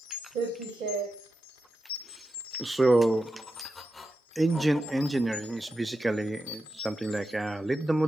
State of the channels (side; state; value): both; normal; correlation 0.89